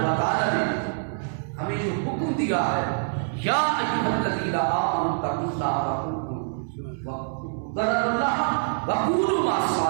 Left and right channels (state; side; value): silent; left; digital silence